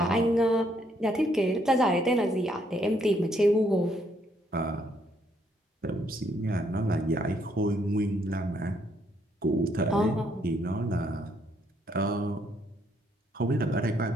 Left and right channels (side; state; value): both; normal; correlation 0.71